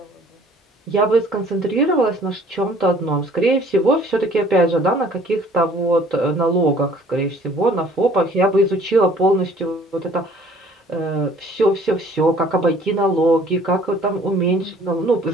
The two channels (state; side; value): normal; both; correlation 0.55